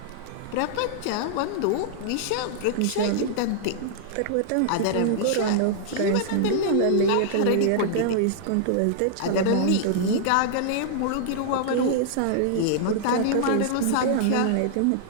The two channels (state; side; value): different; both; correlation -0.01